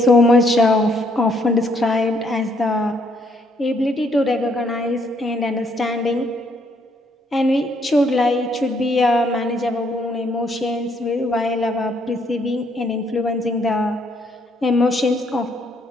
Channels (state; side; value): normal; both; correlation 0.70